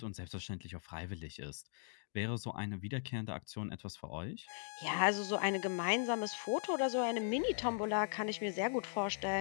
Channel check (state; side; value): silent; right; digital silence